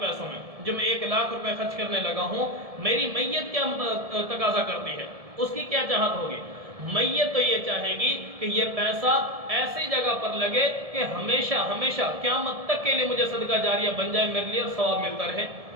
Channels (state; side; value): late; left; 1.7 ms